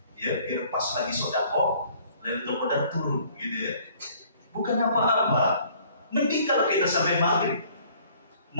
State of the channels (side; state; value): both; inverted; correlation -0.57